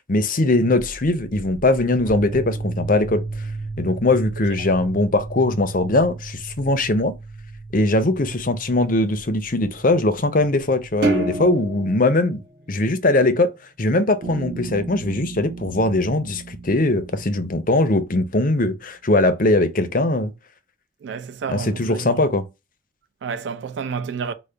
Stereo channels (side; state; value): both; normal; correlation 0.36